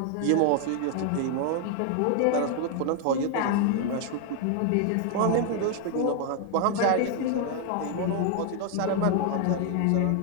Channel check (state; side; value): different; both; correlation 0.00